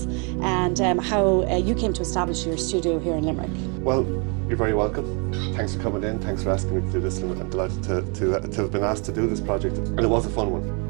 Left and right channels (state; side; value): quieter; left; 35.0 dB